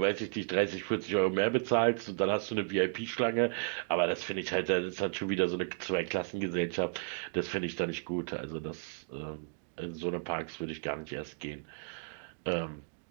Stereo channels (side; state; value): left; silent; digital silence